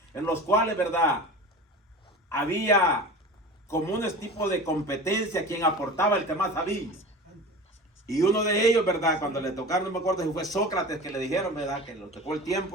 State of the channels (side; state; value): both; normal; correlation 0.34